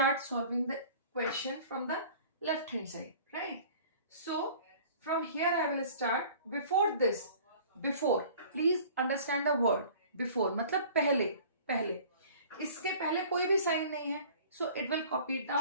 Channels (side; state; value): both; inverted; correlation -0.47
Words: solving the question from the left hand side, right? So from here I will start. Before this, before, please understand the word before, मतलब पहले. इसके पहले कोई भी sign नहीं है, so it will copy it